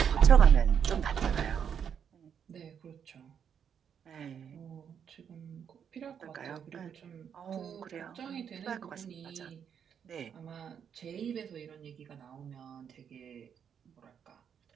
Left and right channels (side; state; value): left; quieter; 7.9 dB